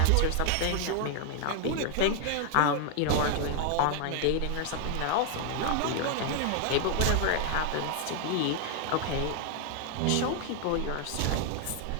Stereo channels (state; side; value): different; both; correlation 0.00